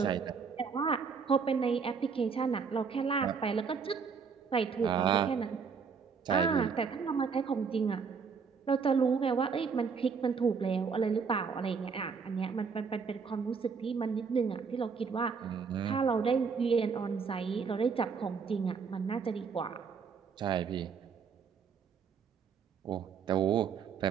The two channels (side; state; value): left; quieter; 5.8 dB